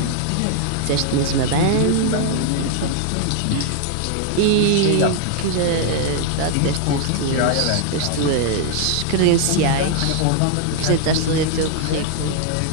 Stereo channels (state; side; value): different; both; correlation 0.00